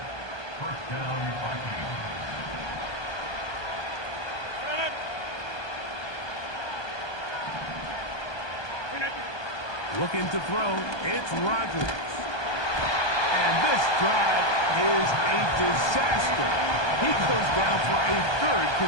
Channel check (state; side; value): late; right; 1.2 ms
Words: First down, Vikings. Looking to throw, it's Rodgers. And this drive is a disaster. He goes down for a 3rd